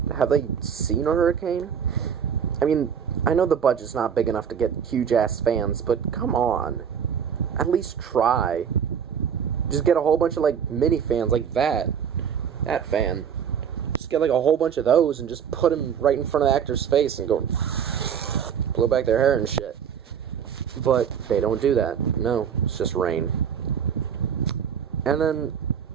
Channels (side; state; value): left; quieter; 7.8 dB